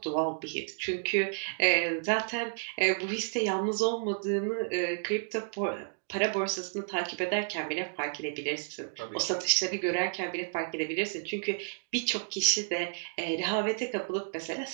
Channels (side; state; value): left; silent; digital silence